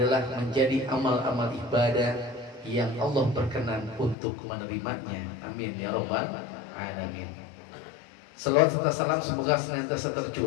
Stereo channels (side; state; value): right; drops out; at 4.2 s